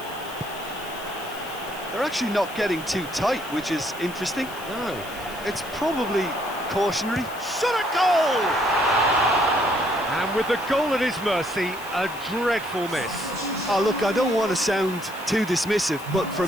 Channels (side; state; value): left; noise; hiss, 17 dB below the sound